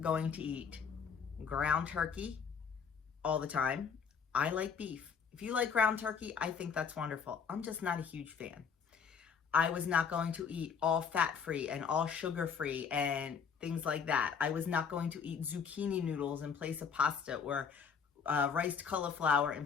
going to eat ground turkey all the time. I like beef. If you like ground turkey, I think that's wonderful. I'm just not a huge fan. I was not going to eat all fat-free and all sugar-free and things like that. I was not going to eat zucchini noodles in place of pasta or riced cauliflower in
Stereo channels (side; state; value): right; quieter; 6.4 dB